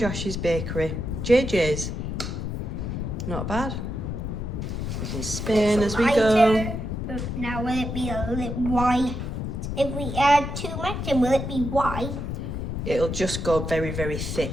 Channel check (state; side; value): noise; left; rumble, 4 dB below the sound